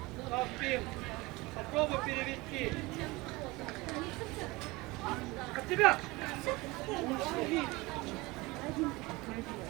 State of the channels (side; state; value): left; quieter; 22.4 dB